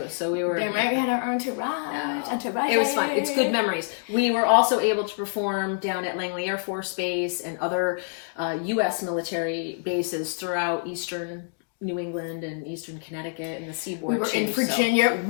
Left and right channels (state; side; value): silent; right; digital silence